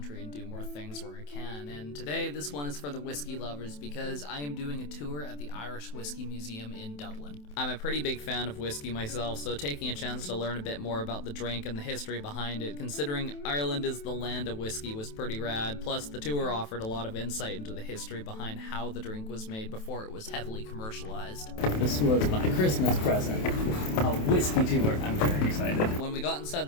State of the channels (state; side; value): late; right; 27 ms